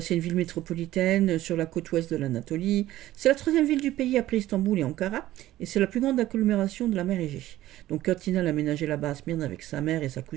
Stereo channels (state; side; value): quieter; left; 14.9 dB